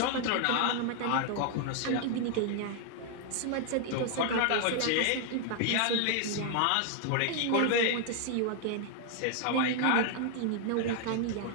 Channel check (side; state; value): both; different; correlation 0.00